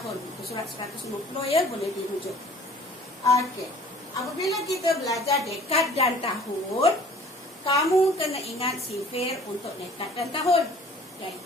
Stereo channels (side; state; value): both; normal; correlation 0.50